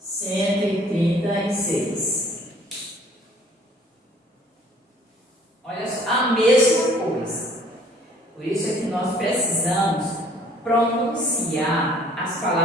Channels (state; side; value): normal; both; correlation 0.56